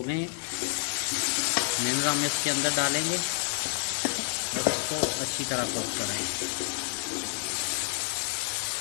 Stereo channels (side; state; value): right; silent; digital silence